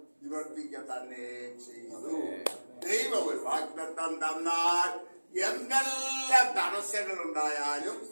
നിവർത്തിക്ക തന്നെ ചെയ്തു. ദൈവം ഒരു വാഗ്ദത്തം തന്നാൽ എന്തെല്ലാം തടസ്സങ്ങൾ ഉണ്ടായാലും,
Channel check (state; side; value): inverted; both; correlation -1.00